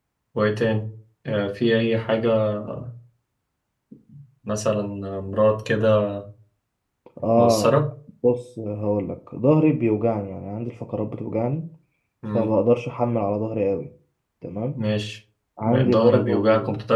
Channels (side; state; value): both; identical; correlation 1.00